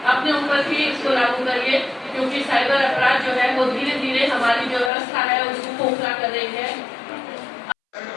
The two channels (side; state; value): right; drops out; at 4.9 s